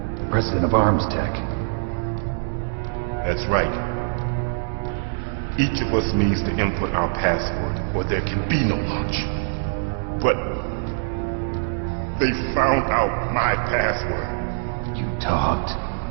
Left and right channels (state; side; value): silent; left; digital silence